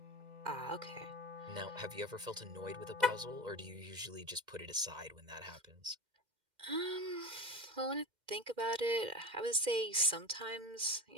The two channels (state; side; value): late; left; 2.1 ms